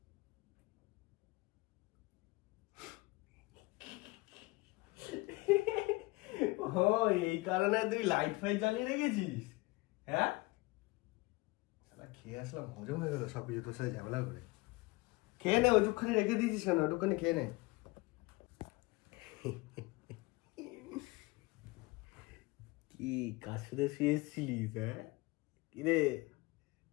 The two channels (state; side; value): quieter; right; 23.0 dB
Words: ও এই কারণে তুই লাইট ফাইট জ্বালিয়ে রেখেছিস? হ্যাঁ শালা, খেয়ে আসলাম, হজম হয়ে গেল সব কিছু তোর সাথে ঝামেলা করে। খেয়ে নে, ওইটুকখানি রেখে দিয়েছিস কেন? ওইটুকখানি খেয়ে নে। কি কার সাথে শুয়েছিলিস? হ্যাঁ কিরে,